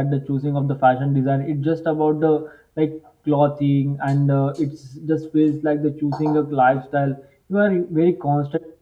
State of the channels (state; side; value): identical; both; correlation 1.00